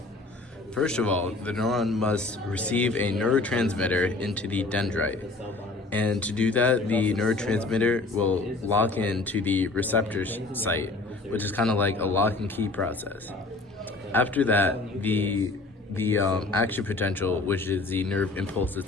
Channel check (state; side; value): quieter; right; 3.3 dB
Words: First of all, the neuron must receive a neurotransmitter into the dendrite. And to do that, the neurotransmitter will lock into the receptor site, which is kind of like a lock and key process. After that, the action potential, which is the nerve impulse